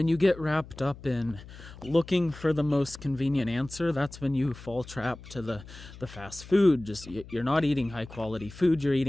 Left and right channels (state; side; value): noise; left; hum, 17 dB below the sound